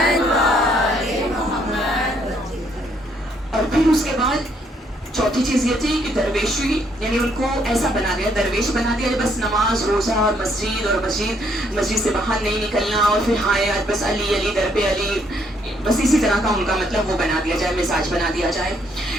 اور پھر اس کے بعد چوتھی چوتھی چیز یہ تھی کہ درویشی، یعنی ان کو ایسا بنا دیا، درویش بنا دیا، بس نماز روزہ اور مسجد سے باہر نہیں نکلنا، اور پھر ہائے بس علی علی در پہ علی، بس اسی طرح کا ان کا مطلب وہ بنا دیا جائے، مزاج بنا دیا جائے۔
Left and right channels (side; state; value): both; normal; correlation 0.69